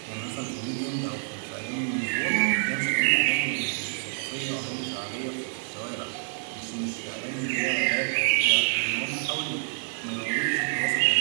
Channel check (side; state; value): left; silent; digital silence